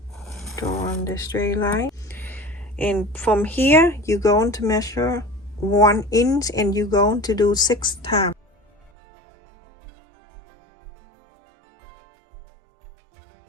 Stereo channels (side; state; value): left; drops out; at 8.9 s